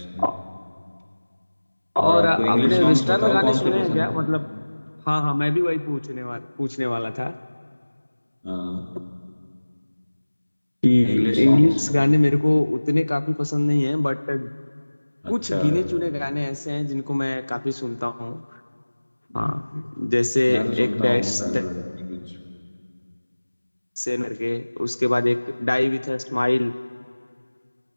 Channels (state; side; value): inverted; both; correlation -1.00